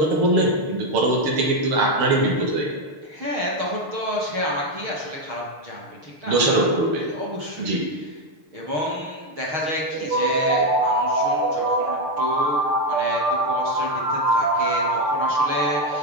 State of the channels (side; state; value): left; late; 6.7 ms